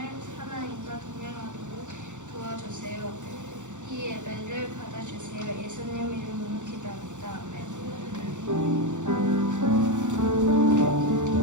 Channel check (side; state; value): left; late; 0.85 ms